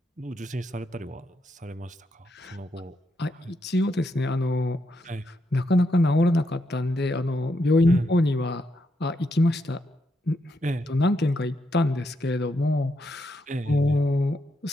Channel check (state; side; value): normal; both; correlation 0.80